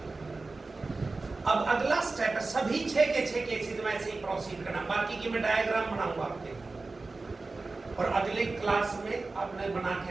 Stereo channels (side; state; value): left; quieter; 3.6 dB